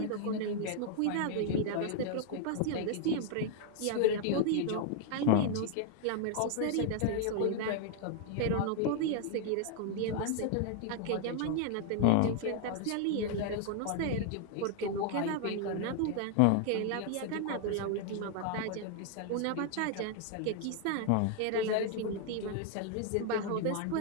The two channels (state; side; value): different; both; correlation 0.00